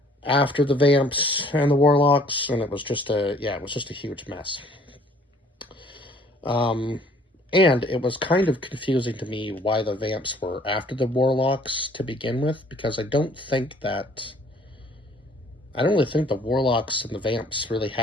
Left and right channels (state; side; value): normal; both; correlation 0.57